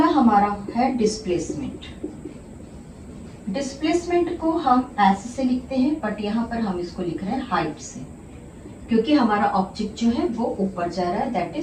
हमारा है डिस्प्लेसमेंट। डिस्प्लेसमेंट को हम ऐसे से लिखते हैं, बट यहाँ पर हम इसको लिख रहे हैं हाइट से, क्योंकि हमारा ऑब्जेक्ट जो है वो ऊपर जा रहा है, दैट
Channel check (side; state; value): both; identical; correlation 1.00